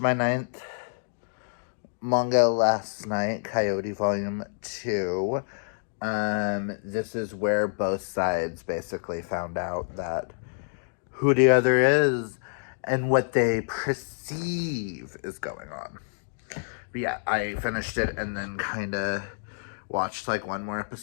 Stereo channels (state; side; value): silent; right; digital silence